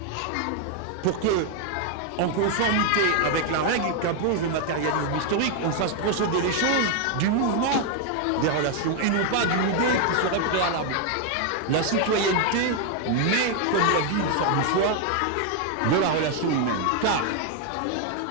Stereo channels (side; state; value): both; different; correlation 0.01